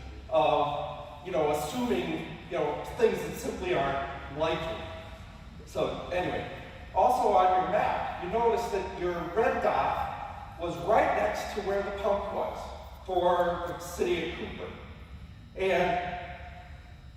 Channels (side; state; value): both; identical; correlation 1.00